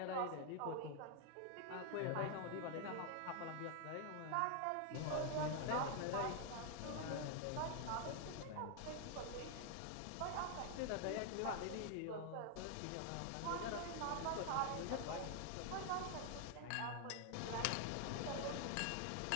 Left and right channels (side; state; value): both; different; correlation 0.00